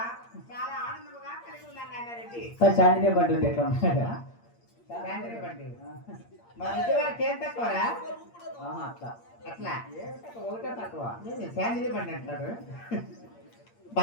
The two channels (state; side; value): late; right; 8.6 ms